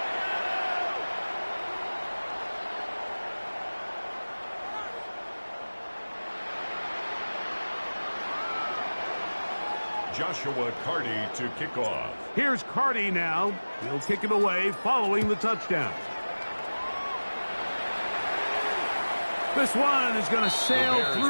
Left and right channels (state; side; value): inverted; both; correlation -1.00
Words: Joshua Carty to kick off. Here's Carty now. He'll kick it away following the touchdown. This one is going to sail